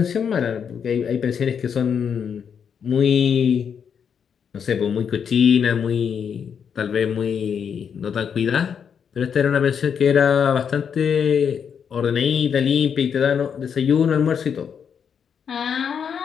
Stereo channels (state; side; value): quieter; right; 7.3 dB